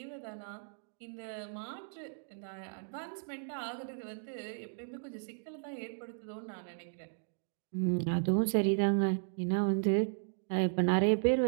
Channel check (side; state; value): left; silent; digital silence